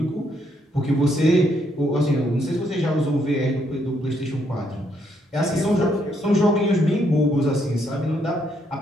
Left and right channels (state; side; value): normal; both; correlation 0.73